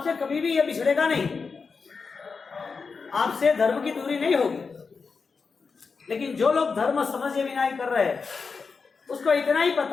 कभी भी यह बिछड़ेगा नहीं, आपसे धर्म की दूरी नहीं होगी। लेकिन जो लोग धर्म समझे बिना ही कर रहे हैं, उसको इतना ही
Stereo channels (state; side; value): quieter; right; 4.9 dB